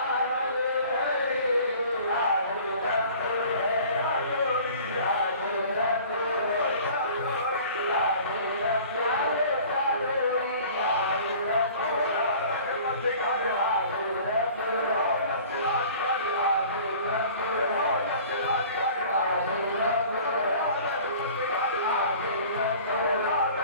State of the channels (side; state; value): both; inverted; correlation -0.46